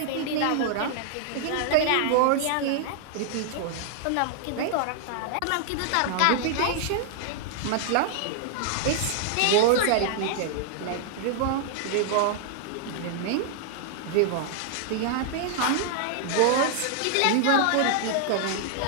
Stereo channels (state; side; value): different; both; correlation -0.01